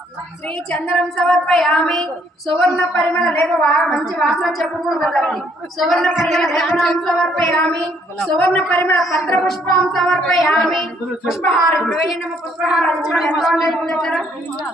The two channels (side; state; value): both; normal; correlation 0.67